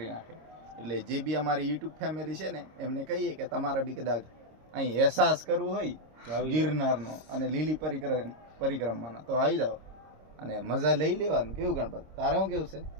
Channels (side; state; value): left; late; 26 ms